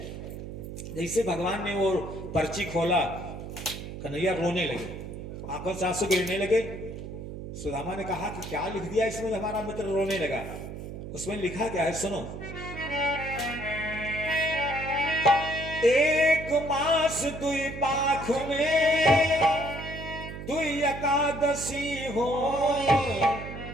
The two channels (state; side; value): noise; right; hum, 9 dB below the sound